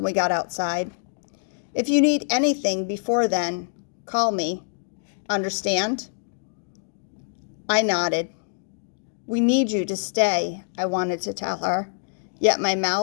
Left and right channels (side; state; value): right; silent; digital silence